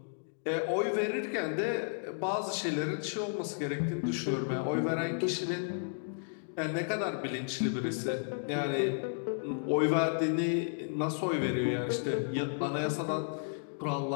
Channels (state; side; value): silent; right; digital silence